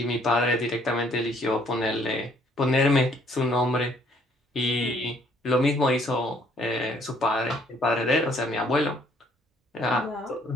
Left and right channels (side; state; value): both; normal; correlation 0.63